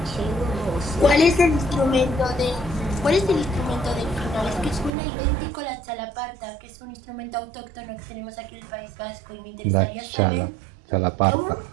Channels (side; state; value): left; drops out; at 4.9 s